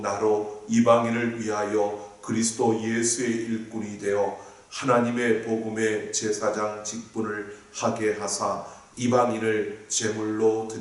이방인을 위하여 그리스도 예수의 일꾼이 되어 하나님의 복음의 제사장 직분을 하게 하사 이방인을 제물로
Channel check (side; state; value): both; identical; correlation 1.00